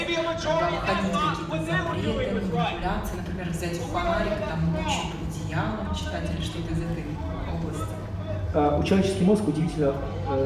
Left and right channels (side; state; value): both; identical; correlation 1.00